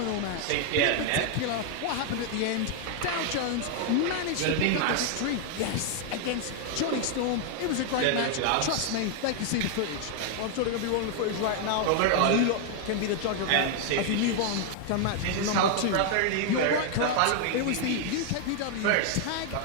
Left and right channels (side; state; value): both; different; correlation 0.00